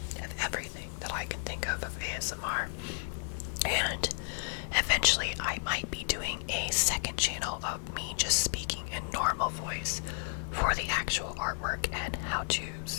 of everything that I can think of ASMR. And eventually I might be doing a second channel of me just speaking in normal voice for the actual artwork and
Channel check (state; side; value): silent; right; digital silence